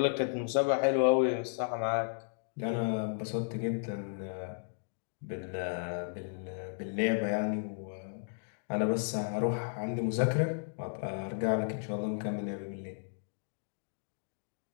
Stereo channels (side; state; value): right; silent; digital silence